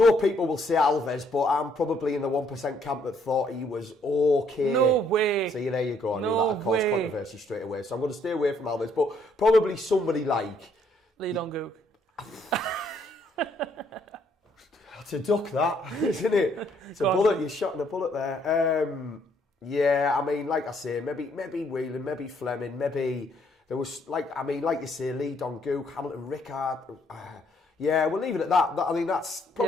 people will say Alves, but I'm probably in the 1% camp that thought he was okay. No way. See, there you go. I knew that would cause controversy straight away. So I'm going to stay away from Alves, but probably somebody like Lee Dong-gook. To duck that, isn't it? It's a bullet. You're shotting a bullet there. Like I say, maybe Whelan, maybe Fleming, maybe there was like you say, Lee Dong-gook, Hamilton Rickard. We'll leave it at that. I think that's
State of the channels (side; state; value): both; normal; correlation 0.68